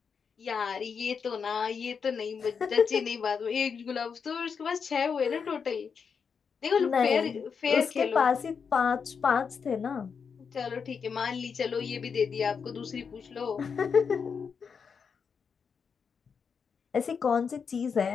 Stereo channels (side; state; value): right; quieter; 6.1 dB